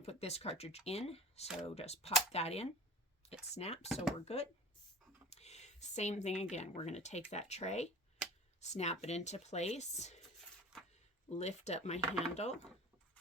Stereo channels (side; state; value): both; normal; correlation 0.38